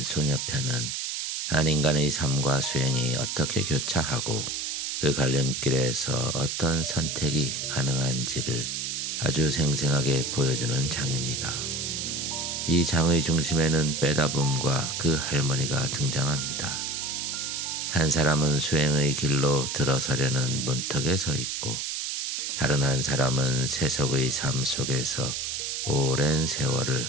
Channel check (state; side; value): noise; right; hiss, 3 dB below the sound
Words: 소녀편은 한 인간의 삶과 수행이 어떻게 교차하고 그 갈림길에서 어떤 선택이 가능한지를 아주 생생하게 보여주는 장입니다. 이 장의 중심에는 빼다붐과 그 할머니가 등장합니다. 한 사람은 수행의 길로 들어서려는 문턱에 서 있고 다른 한 사람은 세속의 삶 속에서 오랜 세월을